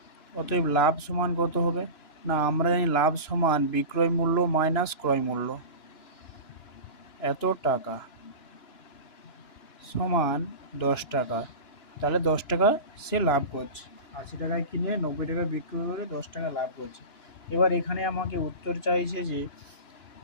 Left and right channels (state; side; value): late; right; 2.9 ms